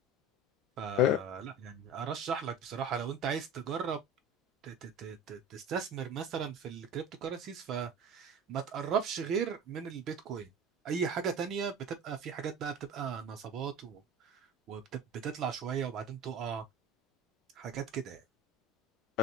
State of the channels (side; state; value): both; normal; correlation 0.36